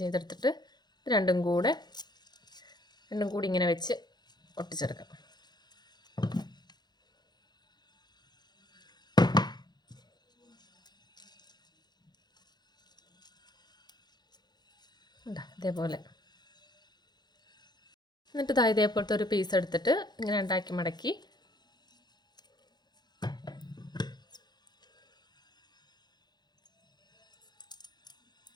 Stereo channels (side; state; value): right; late; 0.20 ms